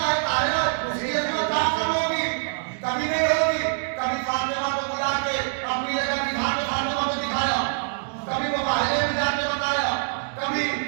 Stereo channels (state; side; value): silent; left; digital silence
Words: है, ताहिरा है, उसकी इस्मत क्या करोगी? कभी नहीं होगी। कभी फातिमा को बुला के अपनी जगह बिठा के फातिमा को दिखाया, कभी वो बाहरे में जाके बताया, कभी